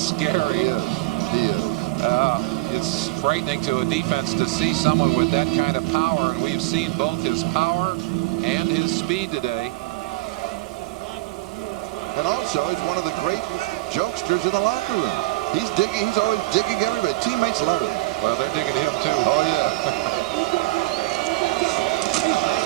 He is. It's frightening to a defense to see someone with that kind of power, and we've seen both his power and his speed today. And also, he's one of the great jokesters in the locker room. He's digging. He's always digging everybody. Teammates love him. Well, they're digging him too. Oh yeah.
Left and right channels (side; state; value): left; quieter; 19.7 dB